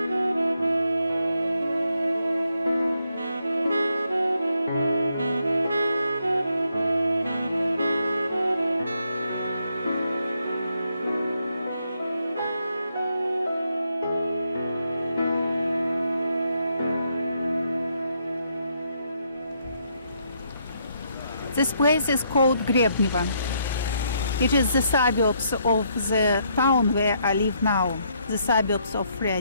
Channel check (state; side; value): inverted; both; correlation -0.74